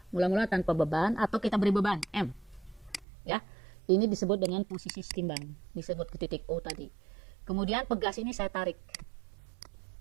Mula-mula tanpa beban atau kita beri beban M. Ya, ini disebut dengan posisi setimbang. Disebut ke titik O tadi. Kemudian pegas ini saya tarik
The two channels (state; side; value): drops out; left; at 3.1 s